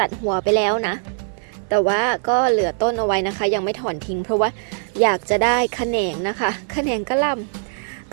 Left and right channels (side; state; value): left; silent; 58 dB below the other